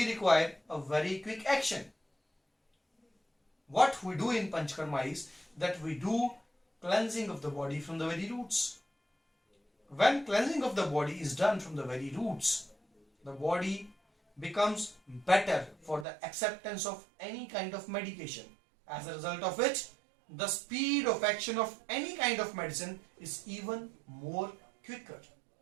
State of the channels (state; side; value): drops out; left; at 16.1 s